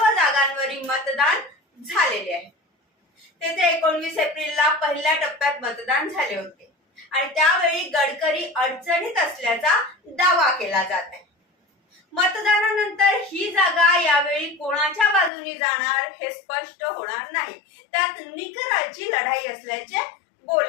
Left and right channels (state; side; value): drops out; right; at 15.3 s